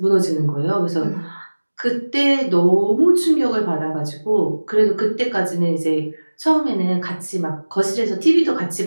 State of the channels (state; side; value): inverted; both; correlation -1.00